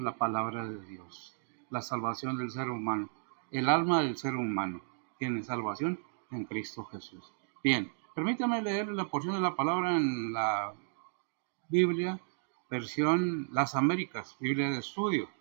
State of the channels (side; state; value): left; silent; digital silence